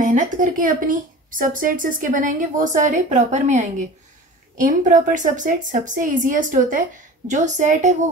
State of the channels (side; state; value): both; normal; correlation 0.38